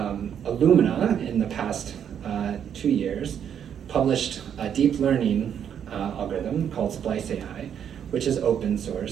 in the past 2 years published a deep learning algorithm called Splice AI, which is open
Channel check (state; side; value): quieter; left; 8.7 dB